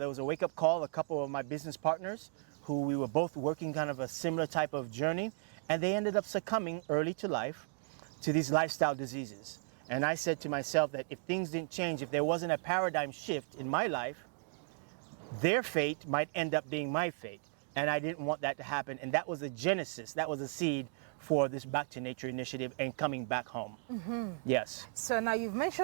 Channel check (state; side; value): silent; left; 54 dB below the other